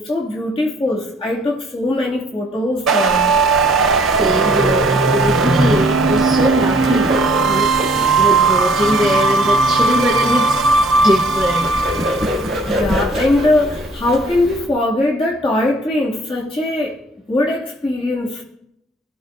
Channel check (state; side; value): normal; both; correlation 0.58